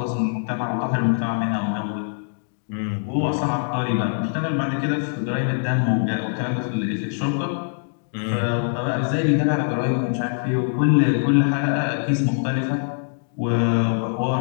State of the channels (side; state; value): right; silent; digital silence